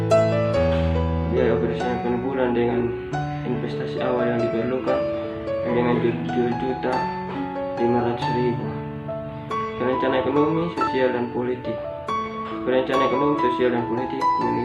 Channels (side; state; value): both; identical; correlation 1.00